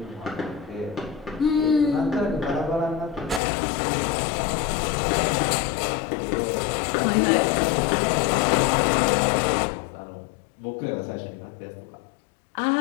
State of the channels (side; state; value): right; drops out; at 3.4 s